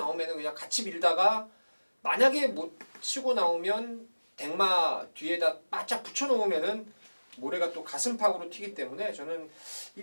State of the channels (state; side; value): inverted; both; correlation -1.00